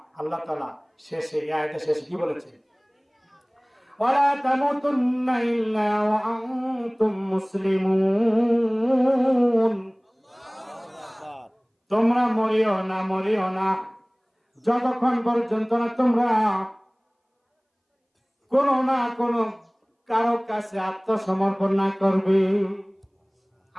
আল্লাহ তাআলা শেষে, এই আয়াতের শেষে কি বলেছে? ওয়ালা তামুতুন্না ইল্লা ওয়া আনতুম মুসলিমুন। তোমরা মরিও না যতক্ষণ পর্যন্ত না তোমরা কোনো না কোনো কারো কাছে আত্মসমর্পণ না করবে।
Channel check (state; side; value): identical; both; correlation 1.00